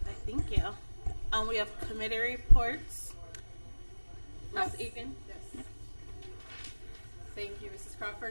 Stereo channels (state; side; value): inverted; both; correlation -1.00